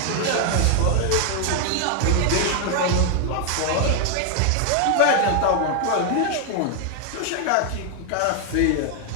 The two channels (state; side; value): different; both; correlation 0.00